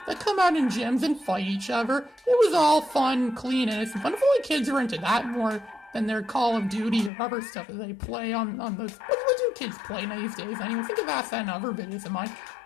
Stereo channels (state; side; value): drops out; right; at 7.1 s